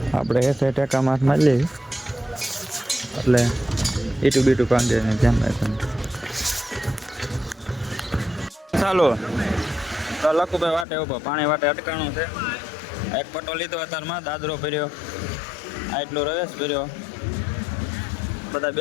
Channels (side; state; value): right; drops out; at 10.9 s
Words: આપણે એ સાઈડ ટેકા માથ મારી લેવી એટલે ઈટું બીટું કાંદે ને ધ્યાન રાખવાનું. ચાલો તો લખુભાઈ વાટે ઉભો પાણી વાટે અટકાણું છે. એક પટો લીધો અત્યારમાં દાદરો ભર્યો આટલો રવેશ ભર્યો બધા